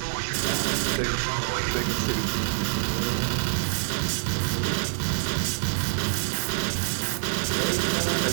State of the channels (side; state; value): left; silent; digital silence